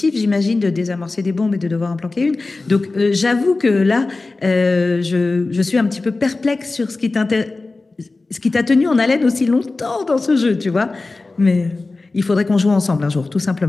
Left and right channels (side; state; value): right; quieter; 3.4 dB